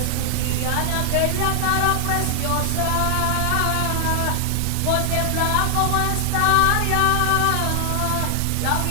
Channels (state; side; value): different; both; correlation 0.00